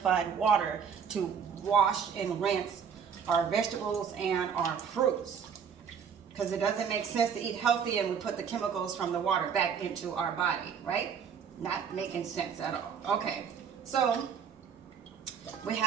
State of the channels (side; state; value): left; quieter; 7.1 dB